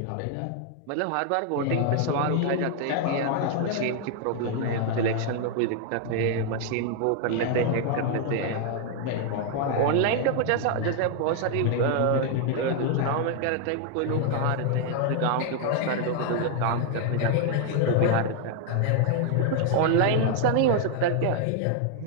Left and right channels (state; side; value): different; both; correlation 0.00